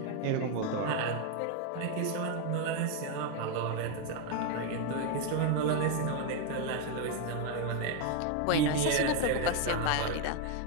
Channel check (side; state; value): both; different; correlation 0.01